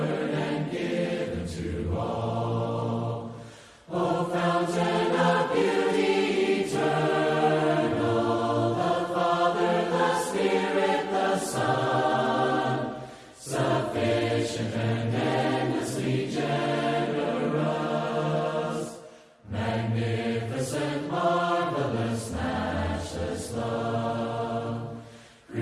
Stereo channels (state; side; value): identical; both; correlation 1.00